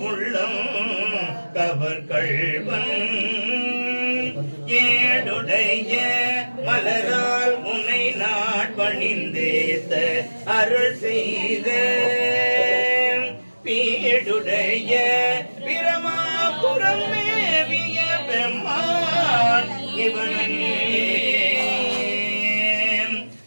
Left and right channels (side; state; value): both; inverted; correlation -1.00